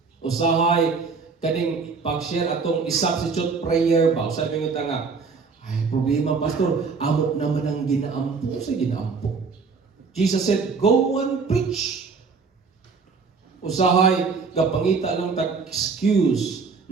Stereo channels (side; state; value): left; quieter; 4.9 dB